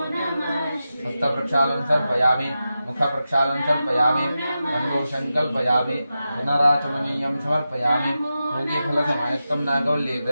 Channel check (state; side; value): inverted; both; correlation -0.91